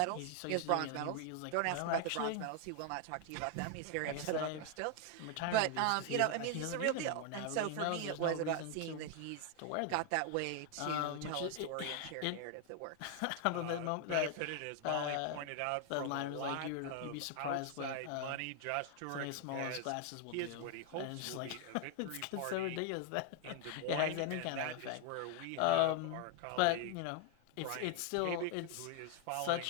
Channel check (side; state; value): both; different; correlation 0.00